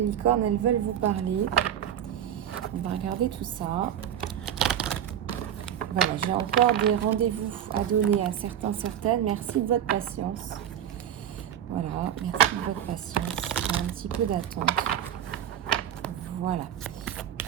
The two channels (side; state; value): left; quieter; 10.1 dB